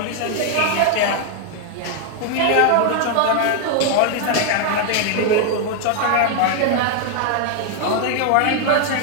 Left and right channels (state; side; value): different; both; correlation 0.00